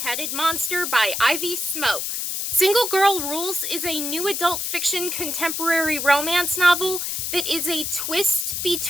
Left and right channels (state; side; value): noise; left; hiss, 2 dB below the sound